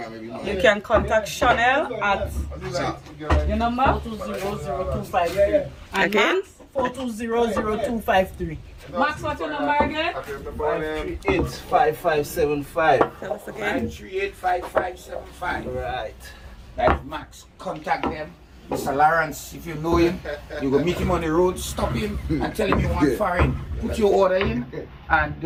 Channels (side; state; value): both; identical; correlation 1.00